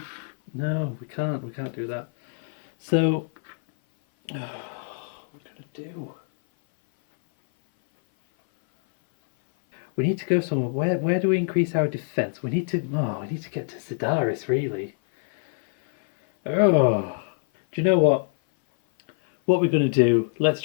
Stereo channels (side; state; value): right; silent; 58 dB below the other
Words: can't. We can't do that. So, what are we gonna do? We need to go somewhere. Where do we increase our defense? We need to get to Sidaris, really. Oh, do you know what? What we're gonna do? Let's